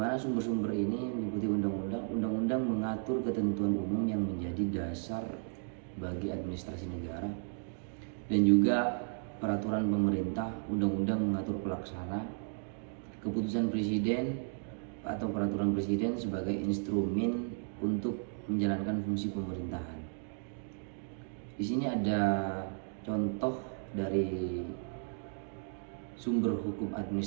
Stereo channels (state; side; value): silent; left; 55 dB below the other